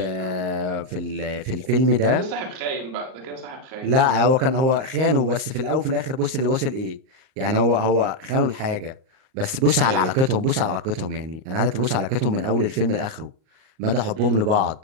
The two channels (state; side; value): late; left; 38 ms